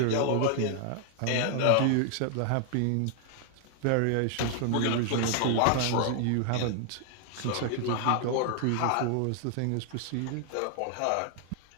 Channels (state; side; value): different; both; correlation 0.00